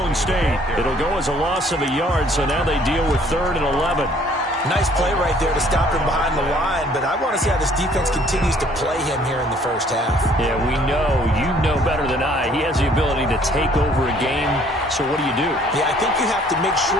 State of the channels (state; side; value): normal; both; correlation 0.59